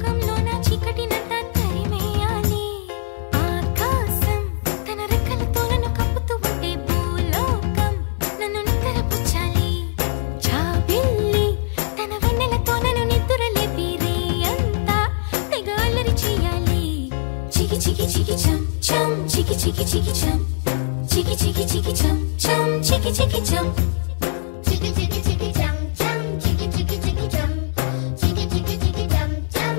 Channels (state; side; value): silent; right; 65 dB below the other